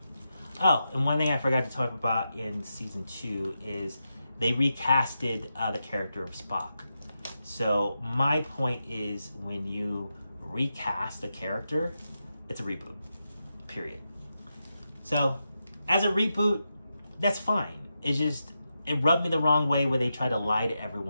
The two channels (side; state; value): both; inverted; correlation -0.87